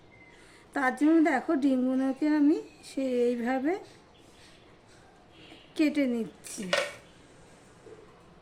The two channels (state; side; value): identical; both; correlation 1.00